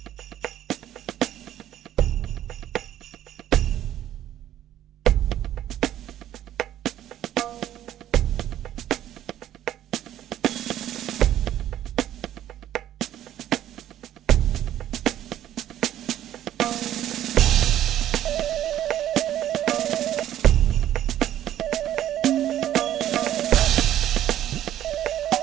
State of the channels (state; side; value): quieter; left; 11.9 dB